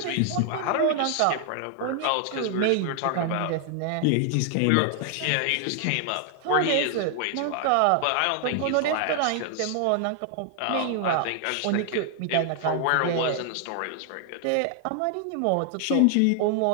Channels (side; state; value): both; different; correlation 0.00